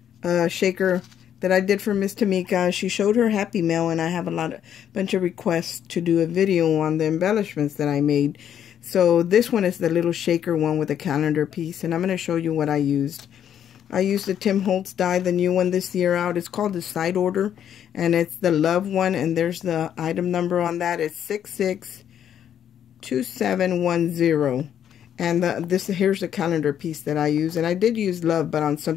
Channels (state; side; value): quieter; right; 9.5 dB